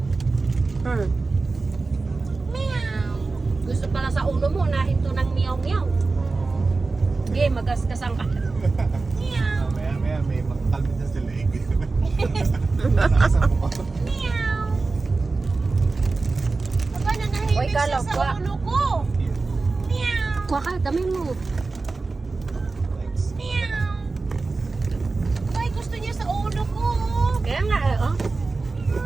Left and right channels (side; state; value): left; quieter; 3.8 dB